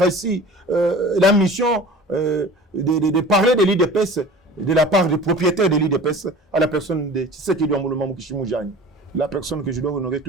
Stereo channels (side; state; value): both; normal; correlation 0.41